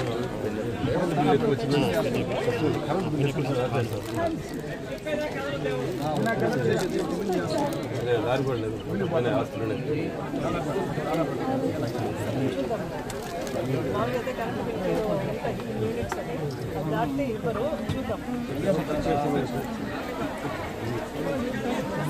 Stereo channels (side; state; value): both; identical; correlation 1.00